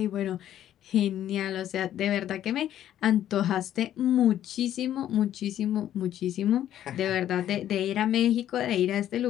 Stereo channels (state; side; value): quieter; right; 11.5 dB